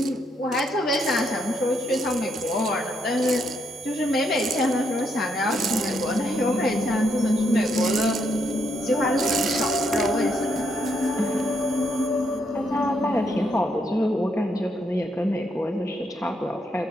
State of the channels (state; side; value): normal; both; correlation 0.76